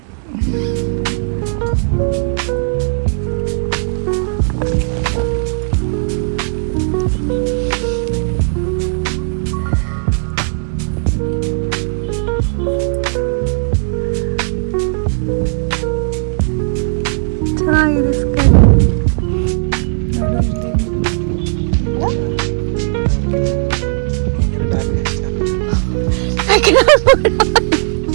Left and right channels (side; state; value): left; silent; digital silence